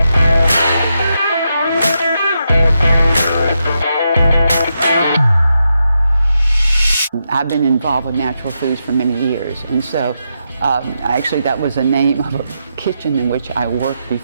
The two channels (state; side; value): inverted; both; correlation -0.84